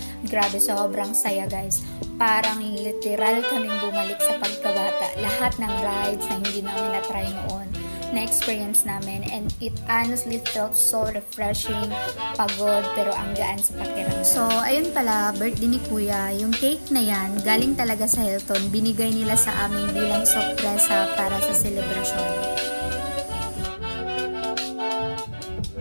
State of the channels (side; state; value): both; inverted; correlation -1.00